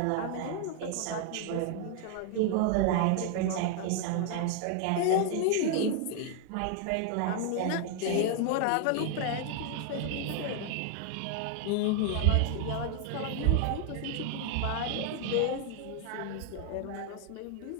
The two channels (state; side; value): different; both; correlation 0.00